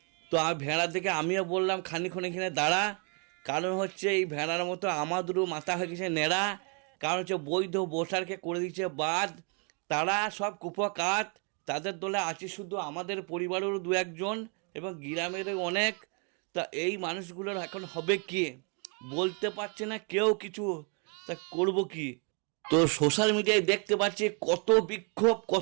তো ভেড়া থেকে আমিও বললাম খানিক্ষণ এখানে দাঁড়া, কারণ হচ্ছে এই ভেড়ার মতো আমাদেরও মাথা হয়ে গেছে নেড়া। কারণ হচ্ছে বৈধ ভোটারকে করে দিচ্ছে বাদ, তারা সব কুপকাত, তাদের দলে আছে শুধু আমাদের পরিবারেরও দু একজন এবং গ্রামেরও অনেক। তা এই মানুষগুলোর এখন হবে কি বলতে পারছে না কেউ কিছু, তা করব কি? তো সোশ্যাল মিডিয়ায় দেখতে পাচ্ছি কত বিক্ষোভ,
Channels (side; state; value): left; quieter; 36.8 dB